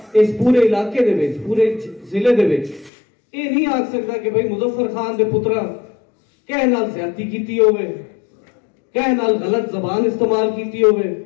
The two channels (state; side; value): drops out; right; at 2.9 s